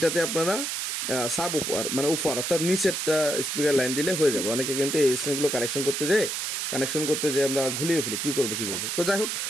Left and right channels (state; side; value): noise; right; hiss, 2 dB below the sound